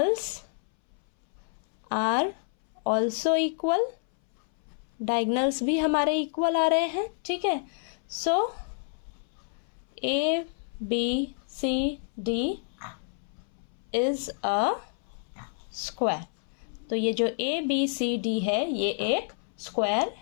are also equal. Diagonals भी हमारे इक्वल आ रहे हैं। ठीक है, so A B C D is a square. तो ये जो ए बी सी डी है ये एक स्क्वायर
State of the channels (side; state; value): right; silent; 59 dB below the other